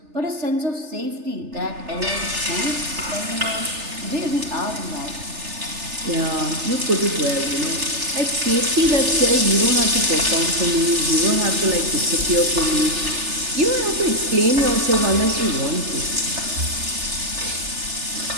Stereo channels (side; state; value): left; late; 3.3 ms